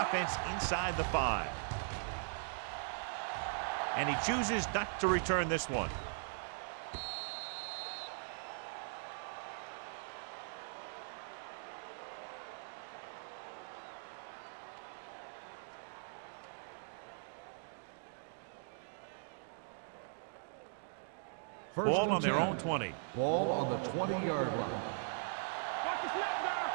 inside the 5. And he chooses not to return this one. First Ball and on their 10. own 20. Ball on the 20-yard line. Watch the snap now.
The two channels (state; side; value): silent; left; digital silence